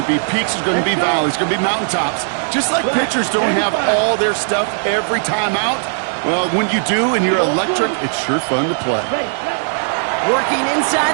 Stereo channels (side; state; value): left; silent; digital silence